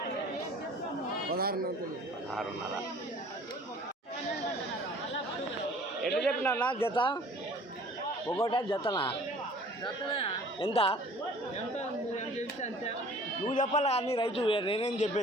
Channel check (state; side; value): normal; both; correlation 0.50